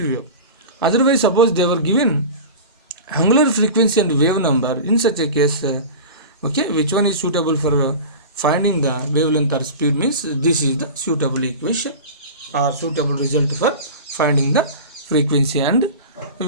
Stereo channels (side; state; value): both; inverted; correlation -0.31